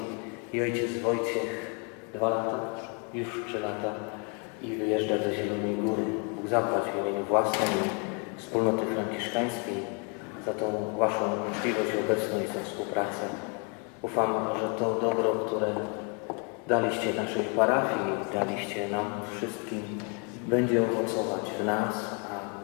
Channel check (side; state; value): right; quieter; 36.3 dB